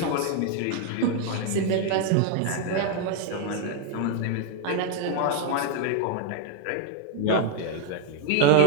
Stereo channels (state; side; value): different; both; correlation 0.01